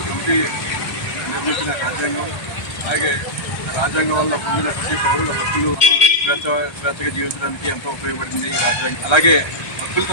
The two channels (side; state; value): right; late; 1.3 ms